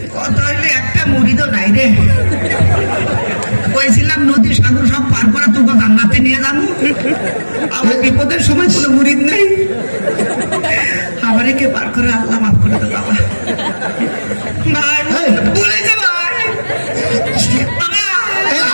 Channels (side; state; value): both; inverted; correlation -1.00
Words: কথা হইলে একটা মুড়িদও নাই রে। কইছিলাম নদী সাগর সব পার করে তোকে জান্নাতে নিয়ে যাবো। আমার বিপদের সময় কোনো মুড়িদ নেই। আমারে কে পার করে আল্লাহ মাফ করে দে বাবা। ভাই বলে যা ভাই।